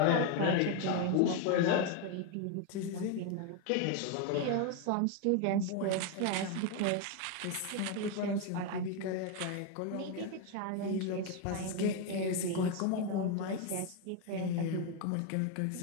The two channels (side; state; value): both; different; correlation 0.02